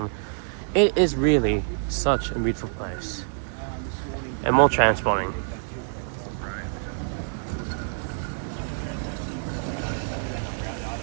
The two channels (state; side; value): silent; left; 61 dB below the other